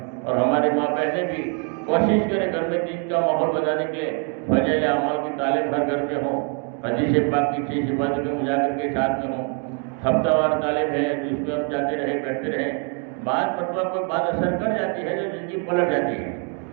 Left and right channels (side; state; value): left; quieter; 39.1 dB